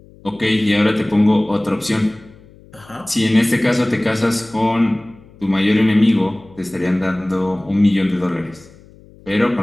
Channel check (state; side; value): noise; left; hum, 25 dB below the sound